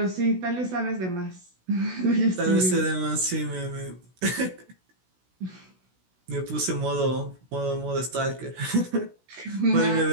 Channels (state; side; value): late; left; 16 ms